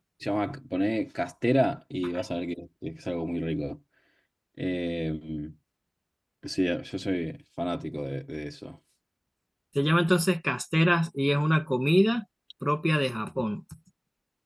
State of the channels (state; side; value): identical; both; correlation 1.00